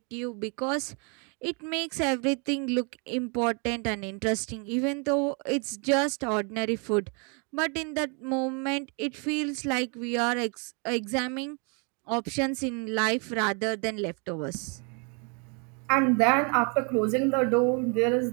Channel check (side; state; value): left; quieter; 35.5 dB